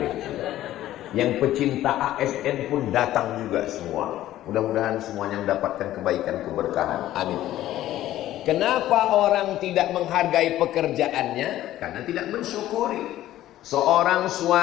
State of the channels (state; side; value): quieter; right; 13.8 dB